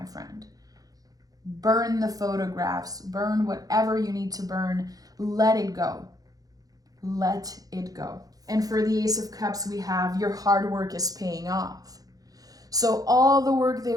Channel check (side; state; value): left; late; 0.18 ms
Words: friend. Burn the photographs, burn whatever you need to burn. Let it go. Let it go. And for the Ace of Cups, we have your hard work is paying off. So all the work